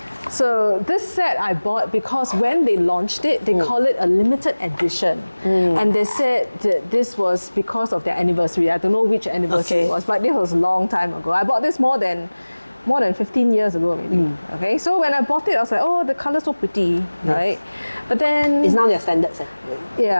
So this set I bought because when they launched it, they call it a limited edition, and they said that this was because of their anniversary. I don't know which anniversary Okay. it was, but this was a long time ago. I bought this more than 15 years ago, maybe. Okay, so when I bought it, I was like, oh, the color's so pretty, right? But then It's now their standard set.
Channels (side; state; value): both; inverted; correlation -1.00